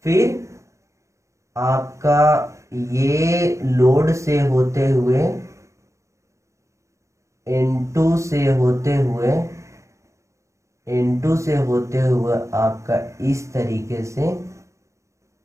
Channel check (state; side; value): late; left; 0.15 ms